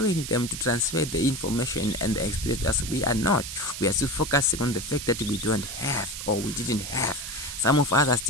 them to transfer the information and the experience as we are not? We are still focusing on the fact that we don't have or we didn't have. Some of us are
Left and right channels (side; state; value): right; noise; hiss, 8 dB below the sound